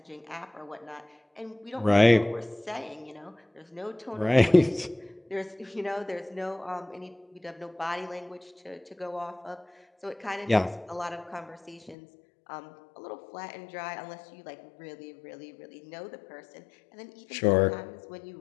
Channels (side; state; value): right; drops out; at 12.0 s